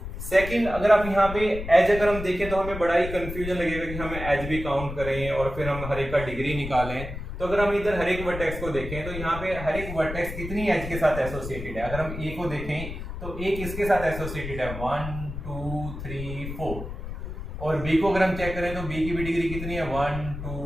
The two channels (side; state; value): left; noise; rumble, 8 dB below the sound